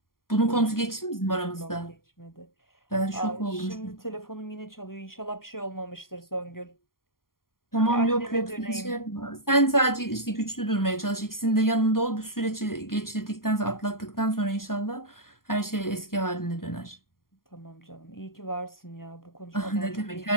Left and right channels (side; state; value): right; late; 0.92 ms